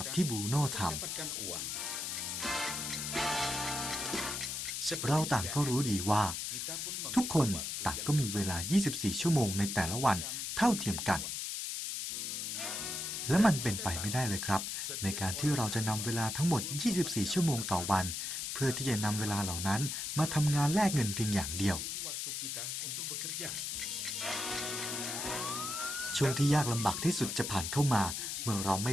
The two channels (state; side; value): noise; left; hiss, 3 dB below the sound